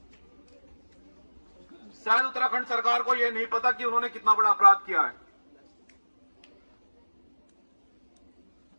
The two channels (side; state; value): both; inverted; correlation -1.00